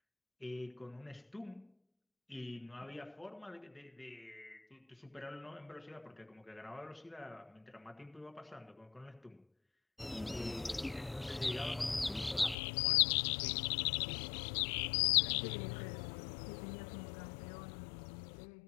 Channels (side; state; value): right; drops out; at 12.6 s